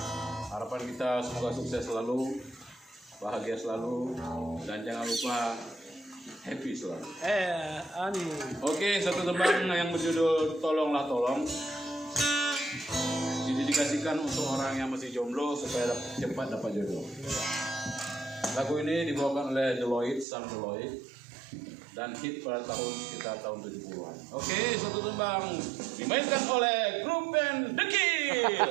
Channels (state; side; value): drops out; left; at 20.2 s